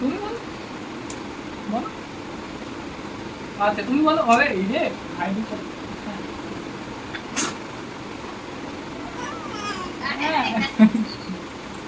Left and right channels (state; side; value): identical; both; correlation 1.00